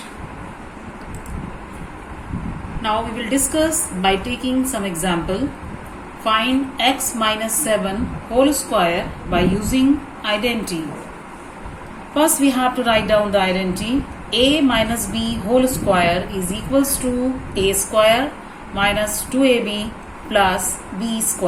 Now we will discuss by taking some example. Find x minus 7 whole square by using identity. First we have to write down the identity. A minus b whole square is equals to a square minus 2ab plus b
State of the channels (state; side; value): identical; both; correlation 1.00